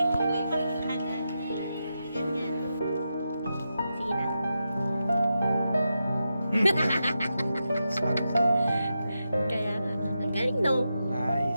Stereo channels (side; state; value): both; inverted; correlation -0.88